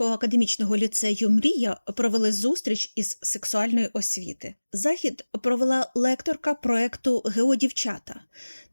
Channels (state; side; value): inverted; both; correlation -1.00